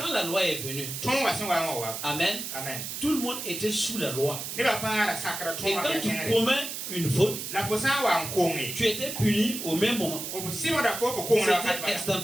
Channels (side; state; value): right; noise; hiss, 6 dB below the sound